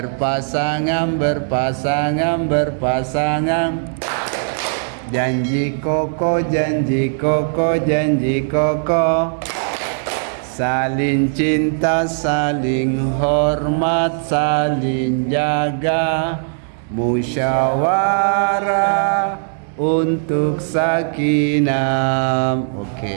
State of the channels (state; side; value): silent; left; 62 dB below the other